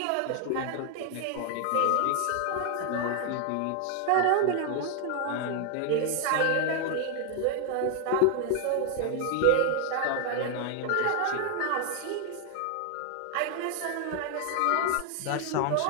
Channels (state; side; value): different; both; correlation 0.00